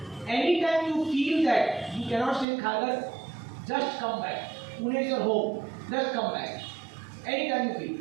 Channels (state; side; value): drops out; left; at 2.5 s